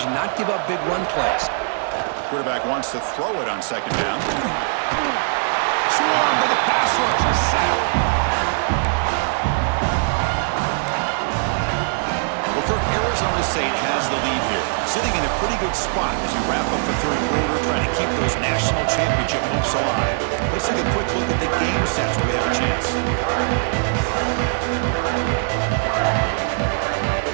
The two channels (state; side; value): silent; left; digital silence